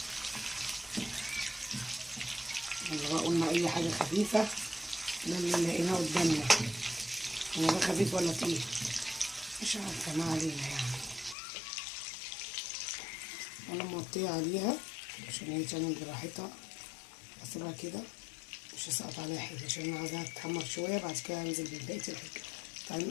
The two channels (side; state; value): right; drops out; at 11.4 s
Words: قلنا اي حاجه خفيفه، ده اللي لقيناه قدامنا. هو ده خفيف ولا تقيل؟ مش عارفه، ما علينا يعني. انا موطيه عليها عشان هي تعمل براحتها، هسيبها كده مش هسقط عليها حاجه عشان انا عايزاها تتحمر شويه. بعد كده هنزل ببقيه الحاجه. تعالوا